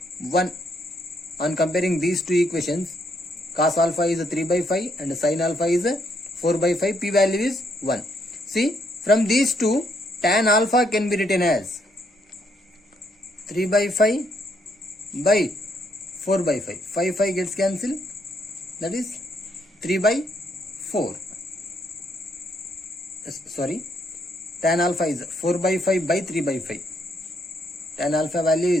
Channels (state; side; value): normal; both; correlation 0.73